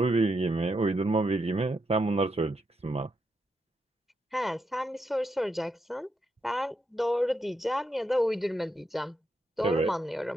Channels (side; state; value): both; normal; correlation 0.82